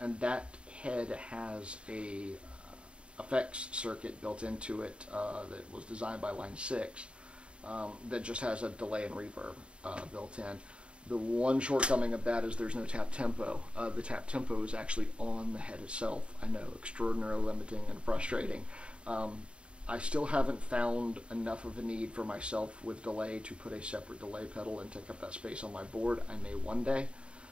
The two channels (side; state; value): left; late; 0.056 ms